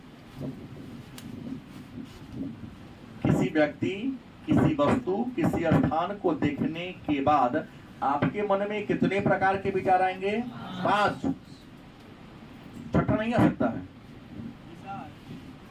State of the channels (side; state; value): both; identical; correlation 1.00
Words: किसी व्यक्ति, किसी वस्तु, किसी स्थान को देखने के बाद आपके मन में कितने प्रकार के विचार आएंगे? 5। छठा नहीं आ सकता है।